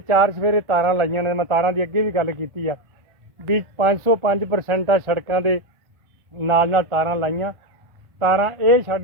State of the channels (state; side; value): late; left; 1.1 ms